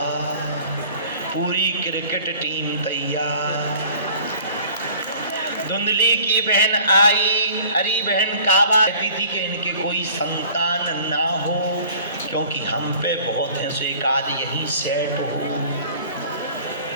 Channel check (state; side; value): inverted; both; correlation -0.48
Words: पूरी क्रिकेट टीम तैयार। धुंधली की बहन आई, अरे बहन काबा कहती थी कि इनके कोई संतान ना हो, क्योंकि हम पे बहुत है, सो एक आध यही सेट हो,